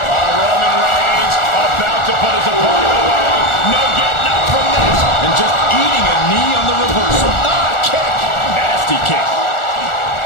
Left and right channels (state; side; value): late; right; 1.4 ms